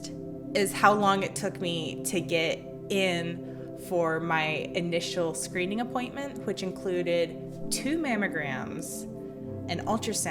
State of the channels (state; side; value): identical; both; correlation 1.00